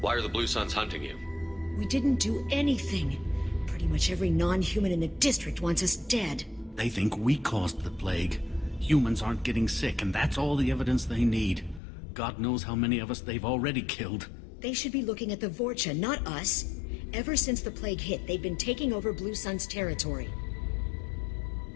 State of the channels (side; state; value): right; drops out; at 11.8 s